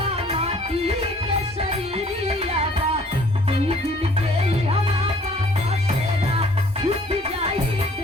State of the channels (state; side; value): normal; both; correlation 0.57